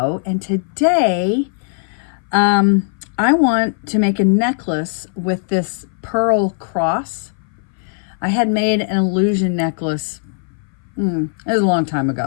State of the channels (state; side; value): silent; right; 59 dB below the other